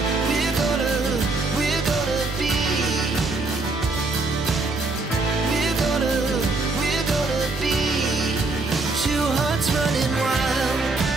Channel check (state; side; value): quieter; left; 3.4 dB